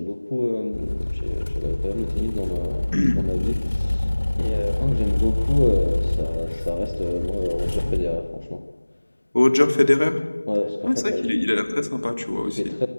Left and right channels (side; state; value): both; inverted; correlation -1.00